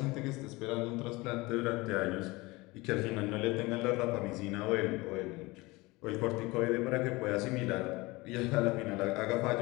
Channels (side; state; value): right; quieter; 22.7 dB